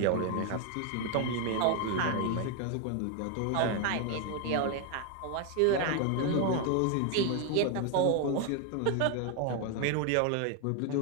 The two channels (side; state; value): both; different; correlation 0.01